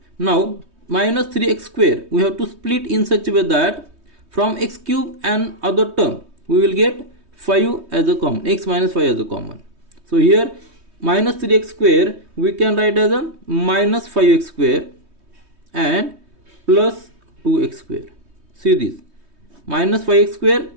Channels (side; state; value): left; late; 3.2 ms